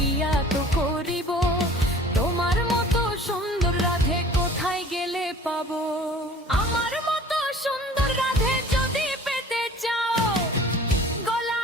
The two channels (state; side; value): normal; both; correlation 0.47